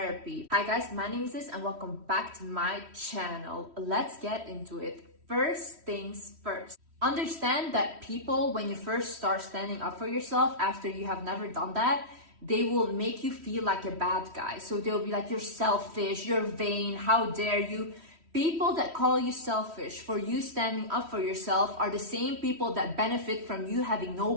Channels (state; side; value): late; left; 3.1 ms